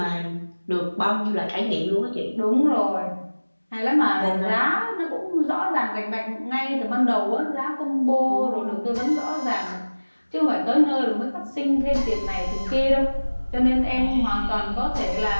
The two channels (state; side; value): inverted; both; correlation -1.00